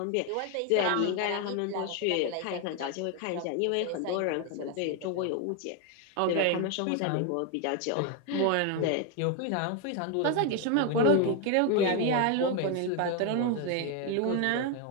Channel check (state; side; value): different; both; correlation 0.01